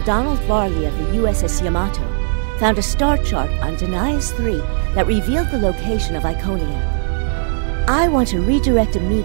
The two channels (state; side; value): silent; left; digital silence